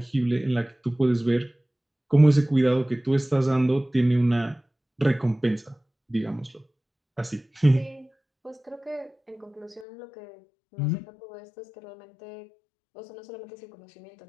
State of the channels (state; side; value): drops out; right; at 9.9 s